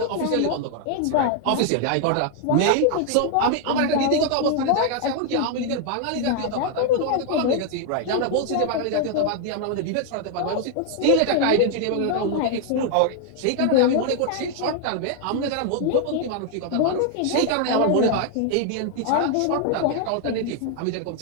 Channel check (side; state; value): both; different; correlation 0.00